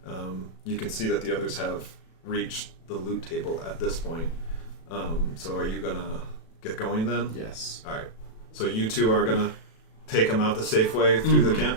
You can see that the others have reached the loot table at this point. So are you gonna get going then? Yes. All right. So you two are gonna take them out the safe way through the camp?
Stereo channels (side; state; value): right; late; 37 ms